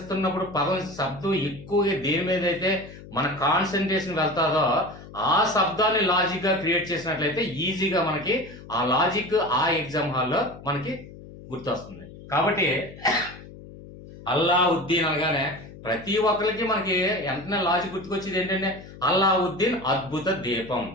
పదం శబ్దం ఎక్కువగా దేని మీద అయితే మన కాన్సన్ట్రేషన్ వెళ్తాదో ఆ శబ్దాన్ని లాజిక్ గా క్రియేట్ చేసినట్లయితే ఈజీగా మనకి ఆ లాజిక్ ఆ ఎగ్జామ్ హాల్లో మనకి గుర్తొస్తుంది. కాబట్టి అల్లావుద్దీన్ అనగానే ప్రతి ఒక్కరికి మనకి వెంటనే లాజిక్ గుర్తుకొచ్చేది ఏంటంటే అల్లావుద్దీన్ అద్భుత దీపం.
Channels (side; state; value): left; noise; hum, 17 dB below the sound